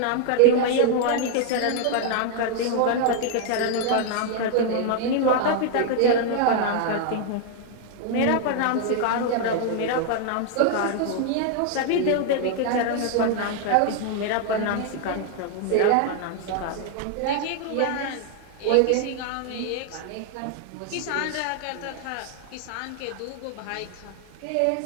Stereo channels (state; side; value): different; both; correlation 0.00